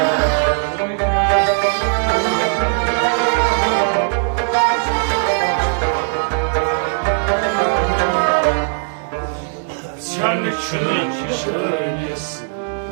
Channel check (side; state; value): left; silent; 67 dB below the other